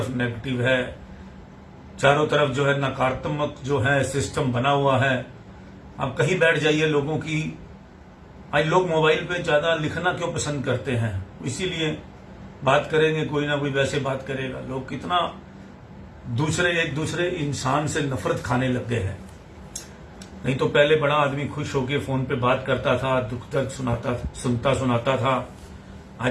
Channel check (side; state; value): both; identical; correlation 1.00